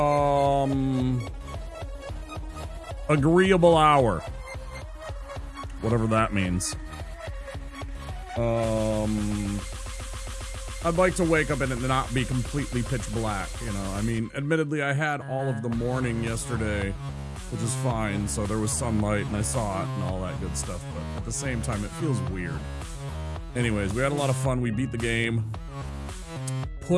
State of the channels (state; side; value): identical; both; correlation 1.00